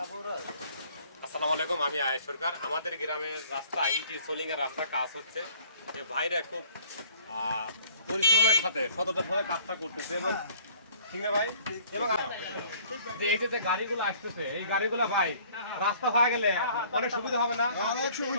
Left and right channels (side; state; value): both; inverted; correlation -0.55